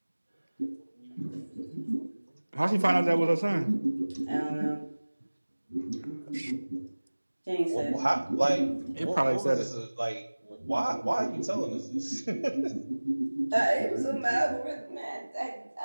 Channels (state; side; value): inverted; both; correlation -1.00